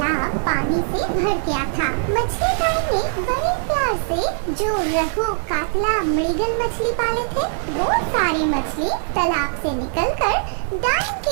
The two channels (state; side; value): silent; left; 57 dB below the other